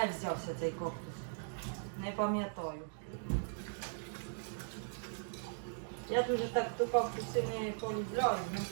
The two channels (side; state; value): left; silent; digital silence